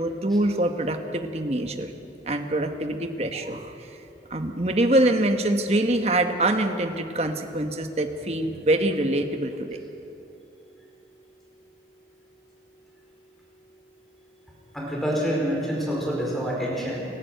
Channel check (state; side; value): normal; both; correlation 0.53